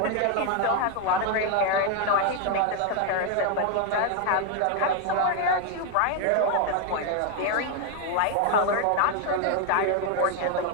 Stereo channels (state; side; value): different; both; correlation 0.01